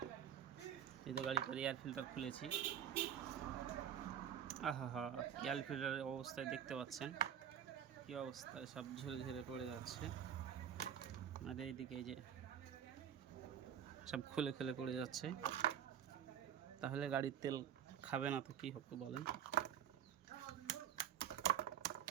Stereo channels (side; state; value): left; quieter; 9.0 dB